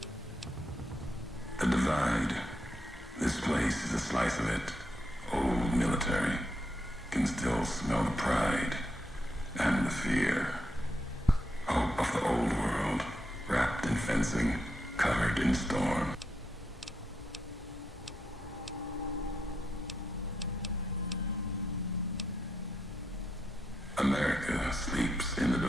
The divide. This place is a slice of it. Old military. Can still smell the pride and the fear. Hope of the old world, wrapped in fencing, covered in storm. America sleeps in the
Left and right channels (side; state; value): both; normal; correlation 0.82